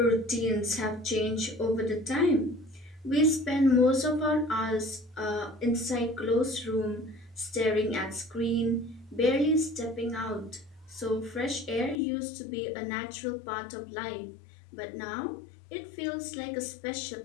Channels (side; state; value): right; drops out; at 12.0 s